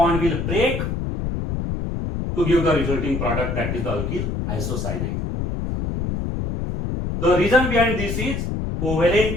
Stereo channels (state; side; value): noise; left; rumble, 3 dB below the sound